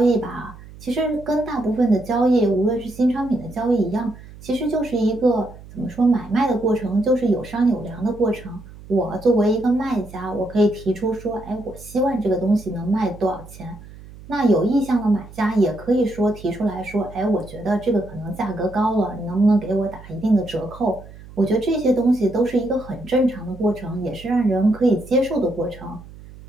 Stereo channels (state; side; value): noise; right; hum, 18 dB below the sound